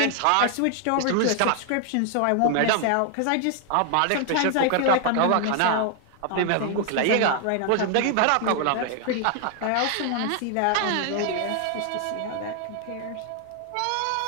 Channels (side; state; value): both; different; correlation 0.00